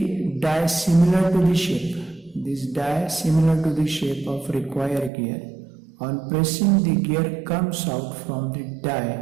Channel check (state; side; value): drops out; left; at 5.1 s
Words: die similar to the shape. This die similar to the shape of required gear. On pressing, the gear comes out from the